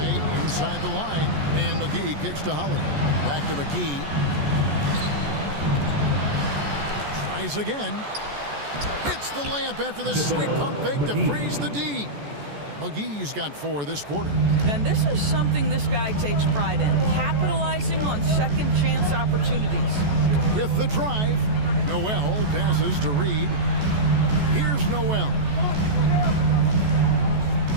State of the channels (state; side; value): late; left; 14 ms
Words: inside the line. And McGee kicks to Holiday. Back to McGee. Tries again. Hits the layup after the sweet pump fake to freeze the D. McGee's got 4 this quarter. And this is something this guy takes pride in, capitalizing on second chance opportunities. With the drive, Noel passes to Reed. Here's Noel.